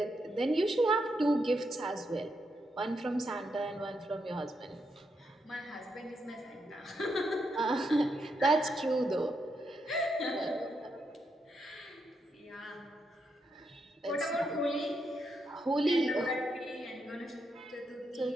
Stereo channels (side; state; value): both; normal; correlation 0.81